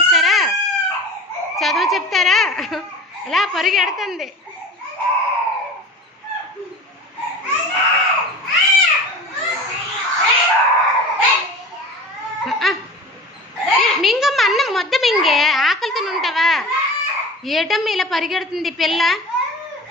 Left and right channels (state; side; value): normal; both; correlation 0.36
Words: చదువు చెప్తారా? ఇలా పరిగెడుతుంది. మింగమ్మ అన్నం మొద్ద మింగే, ఆకలితో ఉంటావా? ఏటమ్మ ఇలా పరిగెడుతుంది పిల్ల.